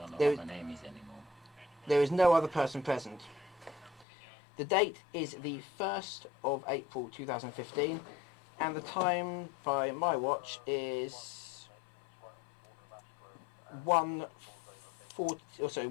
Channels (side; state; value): right; drops out; at 4.0 s